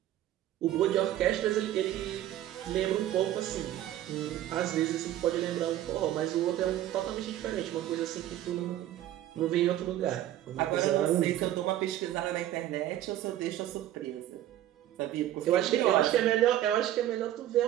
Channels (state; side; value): quieter; left; 12.9 dB